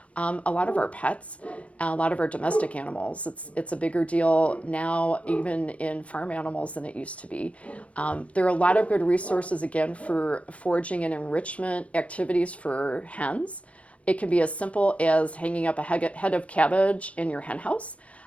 pets, a lot of our domestic animals. It's a bigger deal now, even in farm animals, than it used to be. There are a lot of good resources, again, for foraging and enrichment activities for hens. It can be as simple as hanging up a head of cabbage in your hen house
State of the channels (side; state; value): right; late; 0.064 ms